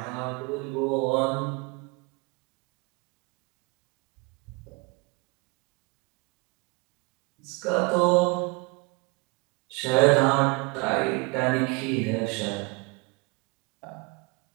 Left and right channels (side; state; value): left; quieter; 29.0 dB